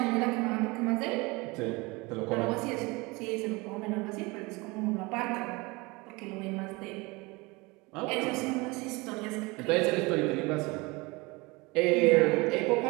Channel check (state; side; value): quieter; left; 24.8 dB